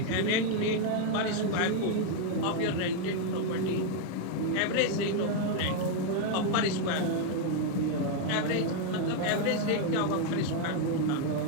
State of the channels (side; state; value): both; different; correlation 0.00